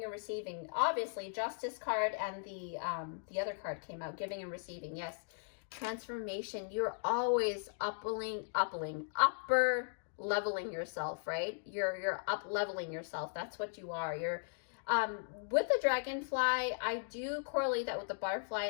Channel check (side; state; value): right; silent; digital silence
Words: and receiving. Obviously, Justice card and the other card came out, giving and receiving. Yes, transformation. You're always upper leveling yourself, right? You're up leveling yourself. That's what you are. You're with the dragonfly, I do correlate that with the butterfly,